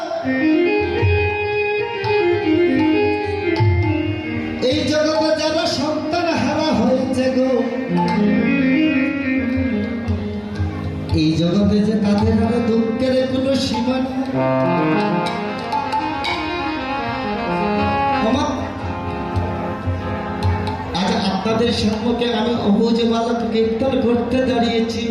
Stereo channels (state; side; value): identical; both; correlation 1.00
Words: এই জগতে যারা সন্তান হারা হয়েছে গো, এই জগতে যে তাদের আর দুঃখের কোনো সীমা নেই। আজ আপনাদের সম্মুখে আমি অবুঝ বালক কীর্তন করতে দাঁড়িয়েছি।